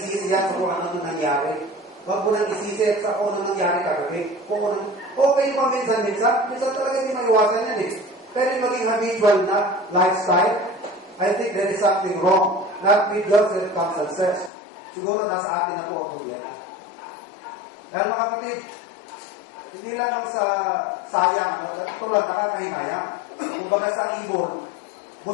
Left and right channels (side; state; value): right; drops out; at 14.5 s